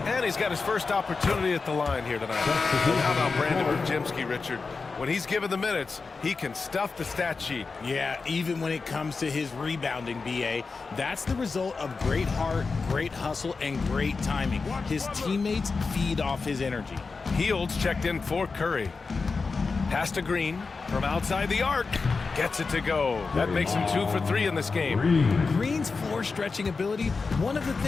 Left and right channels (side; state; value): right; quieter; 4.4 dB